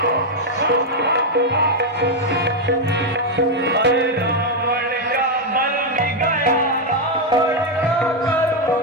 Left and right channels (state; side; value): normal; both; correlation 0.02